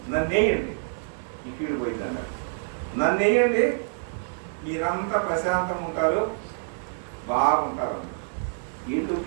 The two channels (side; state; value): left; silent; digital silence